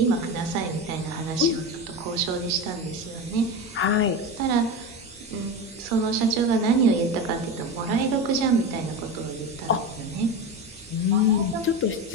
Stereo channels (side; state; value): both; normal; correlation 0.22